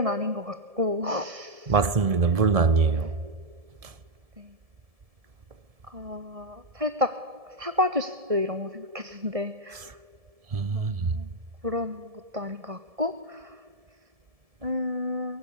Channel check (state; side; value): late; left; 1.7 ms